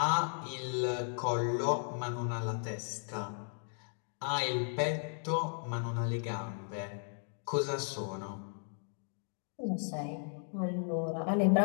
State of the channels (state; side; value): silent; right; 54 dB below the other